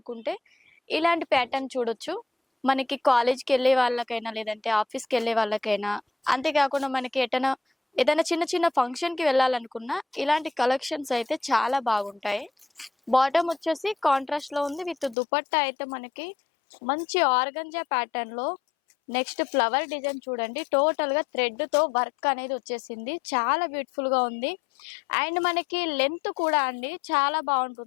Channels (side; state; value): right; drops out; at 15.2 s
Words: ఇలాంటి ప్యాటర్న్ చూడొచ్చు. మనకి కాలేజ్కి వెళ్ళే వాళ్ళకైనా లేదంటే ఆఫీస్కి వెళ్ళే వాళ్ళకైనా, అంతేకాకుండా మనకి ఏదైనా చిన్న చిన్న ఫంక్షన్ కి వెళ్ళాలనుకున్నా ఇలాంటి కలెక్షన్స్ అయితే చాలా బాగుంటాయి. బాటమ్ వచ్చేసి కాంట్రాస్ట్ లో ఉంది. విత్ దుపట్టా అయితే మనకి మంచి ఆర్గంజా ప్యాటర్న్ లో. నెక్స్ట్ ఫ్లవర్ డిజైన్ చూడండి, టోటల్ గా థ్రెడ్ తో వర్క్ అనేది వచ్చేసింది. చాలా బ్యూటిఫుల్ గా ఉంది. అండ్ మనకి లెంత్ కూడా అండి చాలా